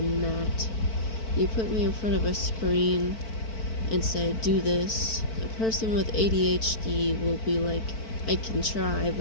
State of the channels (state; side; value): late; right; 4.5 ms